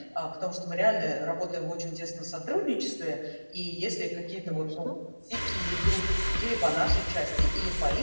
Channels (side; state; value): both; inverted; correlation -1.00